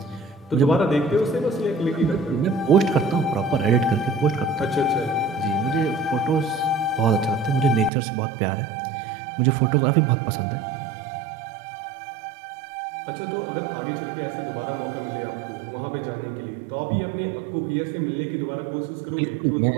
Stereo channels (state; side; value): drops out; left; at 7.9 s